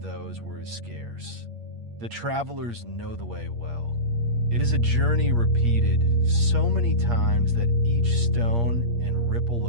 where it is scarce. The travelers know the way well. It is a journey repeated so many times that each stone and ripple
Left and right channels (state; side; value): late; left; 8.5 ms